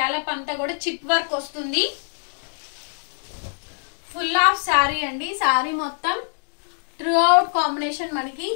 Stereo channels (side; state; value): right; silent; digital silence